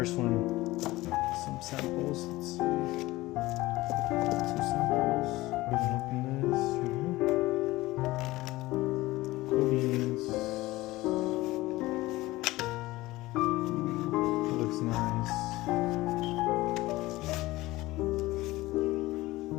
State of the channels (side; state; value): right; quieter; 18.9 dB